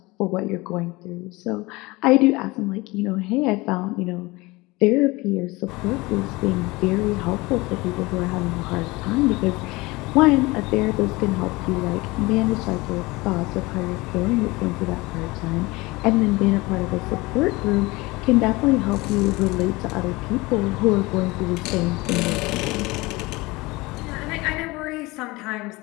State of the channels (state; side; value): quieter; right; 22.5 dB